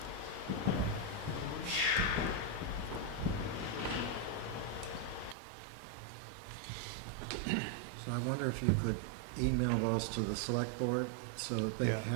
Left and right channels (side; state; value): left; drops out; at 5.4 s